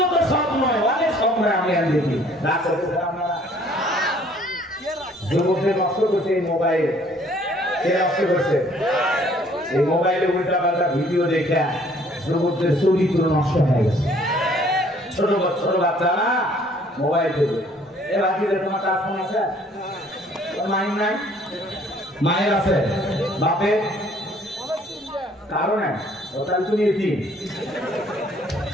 তো স্বপ্ন, অনেক স্বপ্ন আমি আর দেখি রাত করতেছে। আপনারা যুবকদের নষ্ট করছে এই মোবাইল, কে নষ্ট করছে? এই মোবাইলে উল্টা পাল্টা ভিডিও দেখে যুবকদের চরিত্র নষ্ট হয়ে গেছে। ছোট ছোট বাচ্চারা মোবাইল দেখে, এ বাকিদের তোমার কাজ ফোন আছে? মায়ের নাই? মায়ের আছে, বাপের কারণে ওটাই তুমি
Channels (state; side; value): normal; both; correlation 0.59